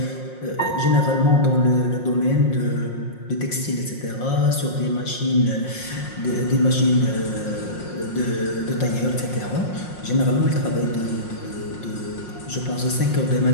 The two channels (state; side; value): late; right; 5.6 ms